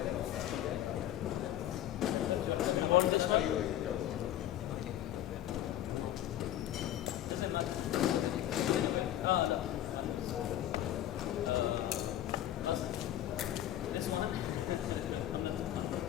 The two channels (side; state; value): right; quieter; 12.4 dB